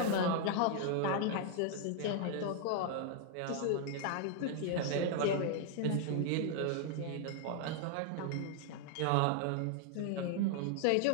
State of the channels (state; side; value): different; both; correlation 0.00